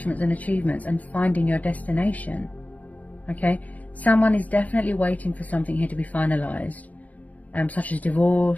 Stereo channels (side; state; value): right; late; 0.075 ms